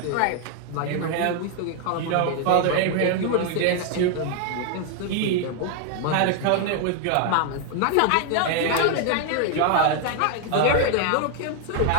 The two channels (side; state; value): both; different; correlation 0.00